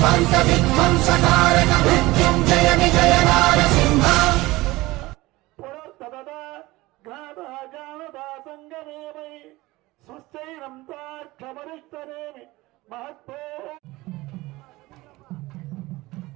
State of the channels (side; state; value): left; quieter; 20.0 dB